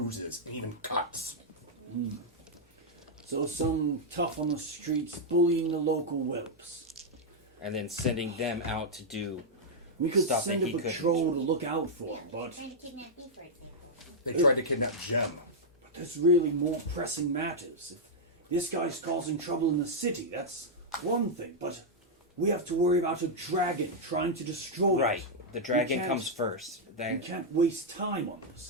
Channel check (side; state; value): both; normal; correlation -0.05